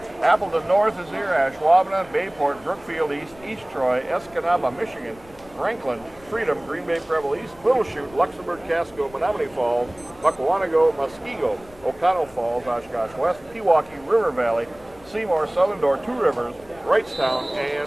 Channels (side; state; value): left; noise; rumble, 24 dB below the sound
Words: Appleton North is here, Ashwaubenon, Bayport, Brookfield East, East Troy, Escanaba, Michigan, Franklin, Freedom, Green Bay Preble East, Little Chute, Luxembourg, Casco, Menominee Falls, Muckawanago, Muskego, O'Connell Falls, Oshkosh West, Pewaukee, River Valley, Seymour, Southern Door, Two Rivers, Wrightstown,